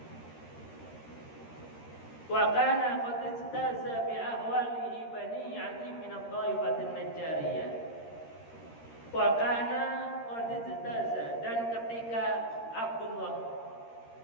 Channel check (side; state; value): right; late; 13 ms